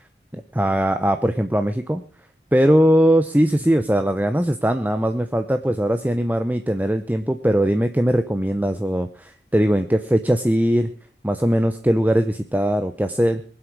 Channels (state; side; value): normal; both; correlation 0.93